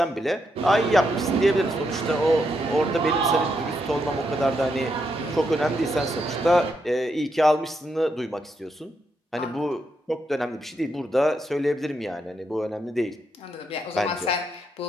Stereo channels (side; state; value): both; normal; correlation 0.80